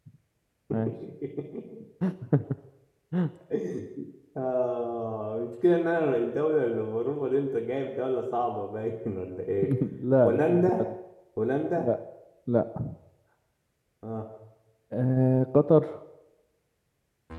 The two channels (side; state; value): both; identical; correlation 1.00